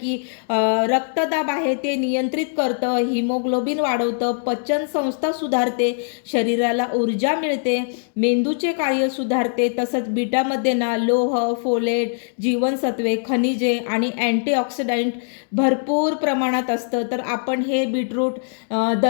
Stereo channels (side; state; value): right; silent; 64 dB below the other